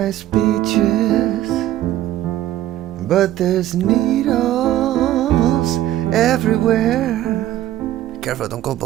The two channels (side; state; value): left; quieter; 13.4 dB